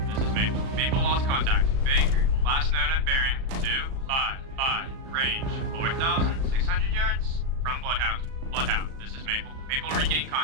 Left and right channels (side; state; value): left; late; 37 ms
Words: this is Maple. Maple lost contact. Baker, last known at bearing 255. Range 4,600 yards from Bloodhound. Bloodhound, this is Maple. Maple regained